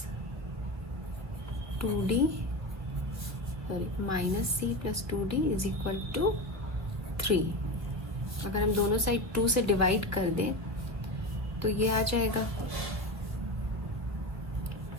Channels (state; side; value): late; left; 1.3 ms